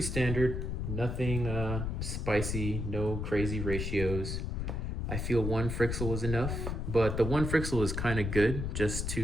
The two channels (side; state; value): left; noise; rumble, 2 dB below the sound